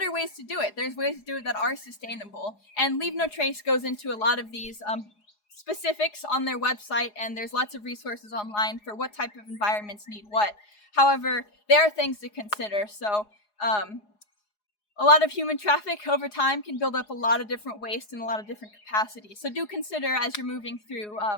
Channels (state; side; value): late; right; 4.8 ms